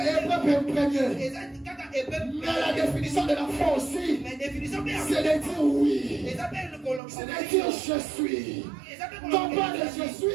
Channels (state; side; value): drops out; left; at 7.0 s